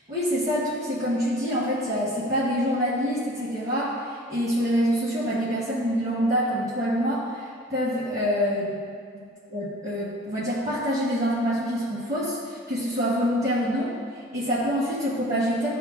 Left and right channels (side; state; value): both; normal; correlation 0.45